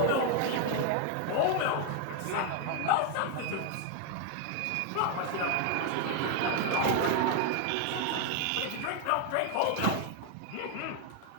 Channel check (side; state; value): both; different; correlation 0.01